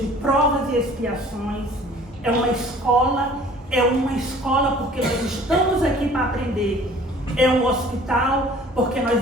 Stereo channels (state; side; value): normal; both; correlation 0.50